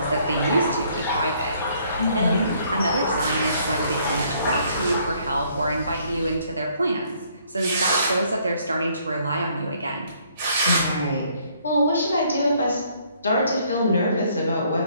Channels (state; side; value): inverted; both; correlation -0.65